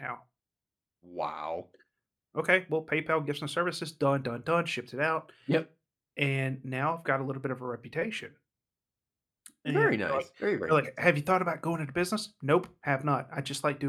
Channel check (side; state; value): both; identical; correlation 1.00